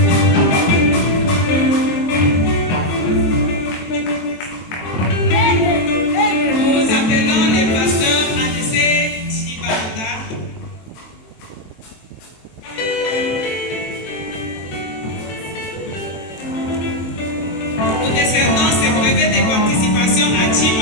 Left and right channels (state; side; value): late; right; 23 ms